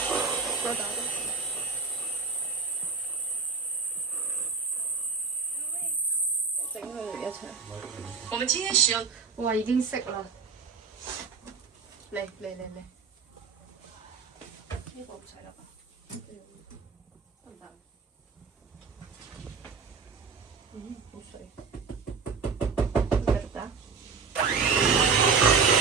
再打多。整佢哋一齊。我們今天使用。哇！已經識啦。嚟。呢個唔使啦吧？得唔得？好水。繼續打。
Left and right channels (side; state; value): left; quieter; 5.2 dB